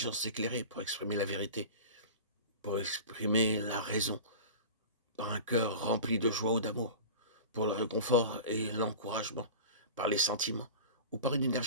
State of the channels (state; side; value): inverted; both; correlation -0.34